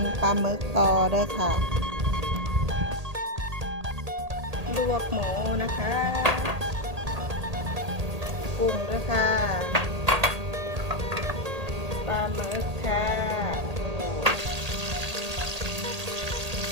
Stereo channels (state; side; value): late; left; 1.8 ms